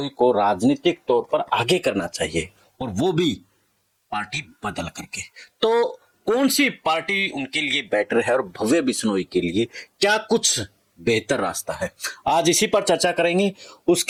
को राजनीतिक तौर पर आगे करना चाहिए, और वो भी पार्टी बदल करके। तो कौन सी पार्टी उनके लिए बेटर है और भव्य बिश्नोई के लिए क्या कुछ बेहतर रास्ता है, आज इसी पर चर्चा करेंगे।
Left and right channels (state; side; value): identical; both; correlation 1.00